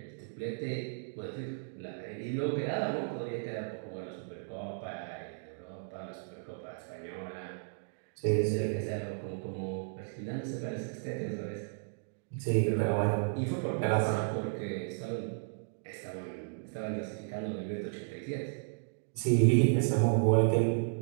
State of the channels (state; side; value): silent; left; digital silence